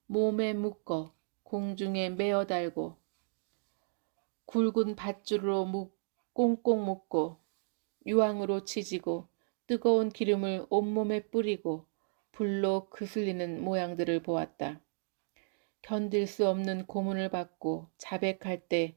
몸에 묶어 공중에 메어 달고 굵은 밧줄로 꽁꽁 묶고 유황으로 지지고 뜨거운 기름을 온몸에 뿌리고 불로 그슬리는 모양들을 보았다. 견딜 수 없는 고문을 받고 자백할 때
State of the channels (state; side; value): silent; left; digital silence